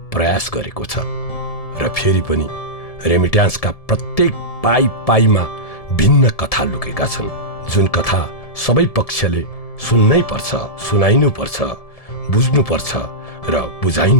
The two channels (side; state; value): right; late; 1.7 ms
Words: प्रयास गरेको छ। र फेरि पनि रेमिट्यान्सका प्रत्येक पाइमा भिन्न कथा लुकेका छन्, जुन कथा सबै पक्षले सुन्नै पर्छ, सुनाइनु पर्छ, बुझ्नु पर्छ र